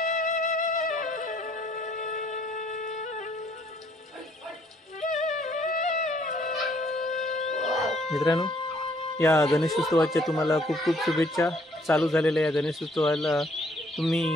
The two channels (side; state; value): both; normal; correlation 0.65